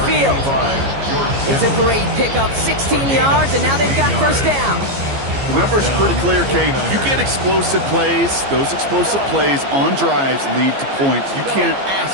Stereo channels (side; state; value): left; late; 15 ms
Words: It's a great pickup, 16 yards, and now they've got first down. The numbers are pretty clear, Kate. You get explosive plays. Those explosive plays on drives lead to points. You can't